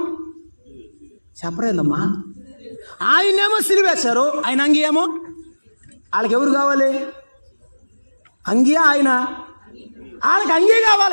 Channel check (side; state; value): both; inverted; correlation -1.00